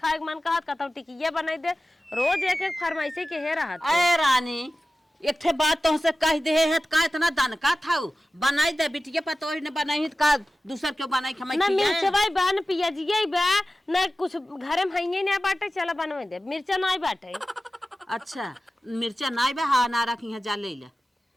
के मन कहत कतौ टिकिया बनाई दे रोज एक एक फरमाइशी के हे रहत। अरे रानी एक ठे बात तुमसे कह दे है का इतना दनका था बनाई दे बिटिया पर तो ने बनाई का दूसर क्यों बनाई खमाई ना मिर्चवाई बा न पियाजिया बा ना कुछ घरे में हइये ना बाटे चला बनवे दे मिर्चा नहीं बाटे। अच्छा मिर्चा नहीं बा हाँ ना रखी है जा ले ले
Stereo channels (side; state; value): both; normal; correlation 0.95